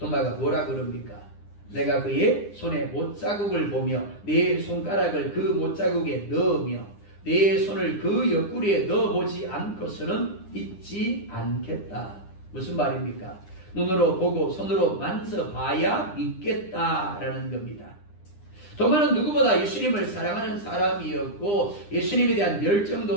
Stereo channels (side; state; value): right; late; 9.9 ms